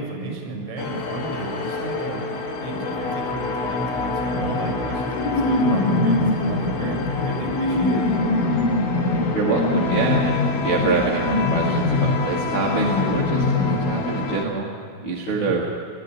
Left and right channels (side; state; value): right; late; 16 ms